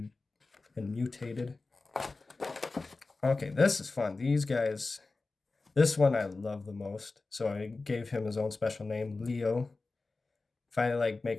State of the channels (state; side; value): quieter; right; 3.6 dB